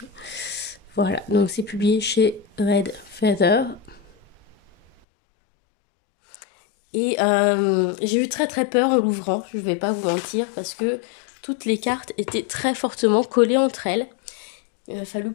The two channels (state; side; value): drops out; right; at 4.9 s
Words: Voilà, donc c'est publié chez Red Feather. Et j'ai eu très très peur en l'ouvrant, je ne vais pas vous mentir, parce que toutes les cartes étaient très fortement collées entre elles. Il a fallu